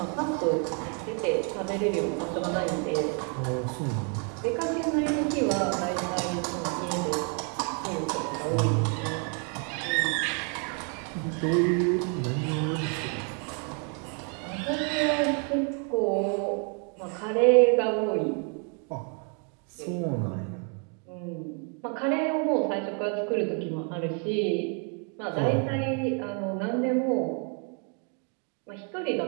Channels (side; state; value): left; quieter; 39.5 dB